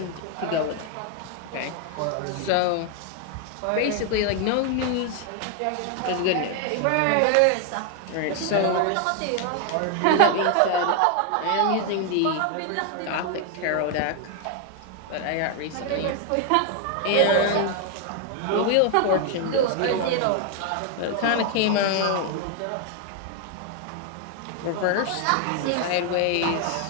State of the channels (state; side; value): different; both; correlation 0.01